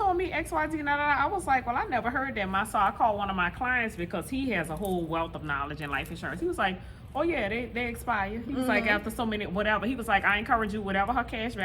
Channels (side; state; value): both; identical; correlation 1.00